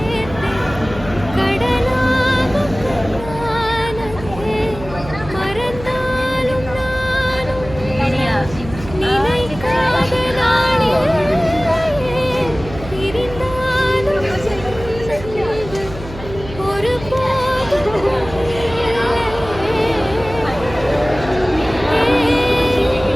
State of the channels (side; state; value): right; noise; hum, 13 dB below the sound